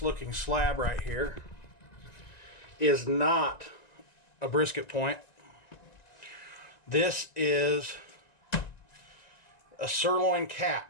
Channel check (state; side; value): late; right; 1.9 ms